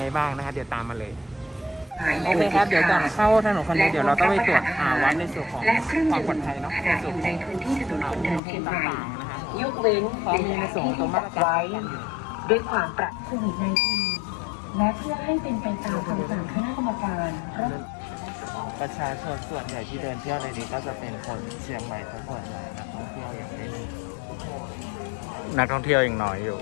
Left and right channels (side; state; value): right; drops out; at 8.4 s